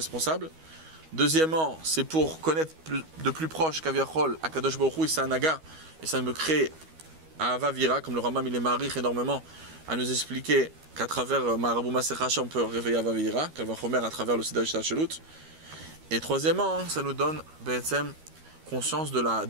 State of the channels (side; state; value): left; late; 13 ms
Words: Deuxièmement, c'est pour connaître de plus proche qu'Aviachol, Akadosh Baruch Hu, c'est un naga, et ça me crée Ahava Vira, comme le Rambam il est marich énormément, à nous expliquer qu'à travers Marabou Maser Racha, on peut réveiller Ahava Vira, qu'elle va Chomer à travers le Seder Shachot. Et troisièmement, ça nous donne conscience de